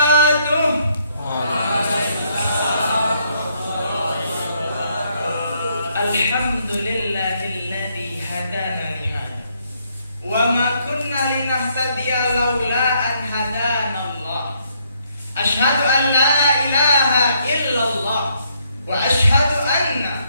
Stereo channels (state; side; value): inverted; both; correlation -0.71